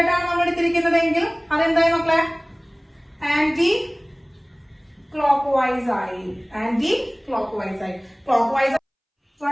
ആണ് നമ്മൾ എടുത്തിരിക്കുന്നതെങ്കിൽ അതെന്തായി മക്കളെ? ആന്റി ക്ലോക്ക് വൈസ് ആയി.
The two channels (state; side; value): identical; both; correlation 1.00